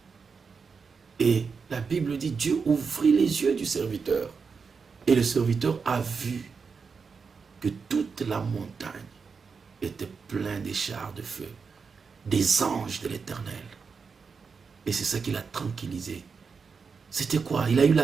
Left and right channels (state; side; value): quieter; left; 5.4 dB